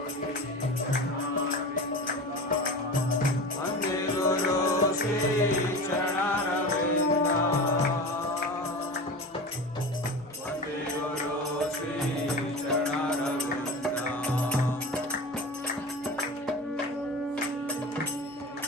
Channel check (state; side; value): noise; right; hum, 29 dB below the sound